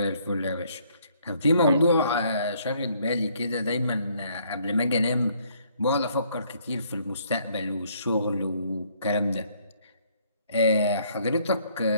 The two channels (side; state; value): both; inverted; correlation -0.66